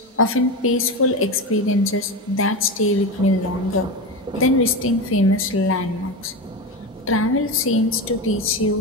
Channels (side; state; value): both; normal; correlation 0.20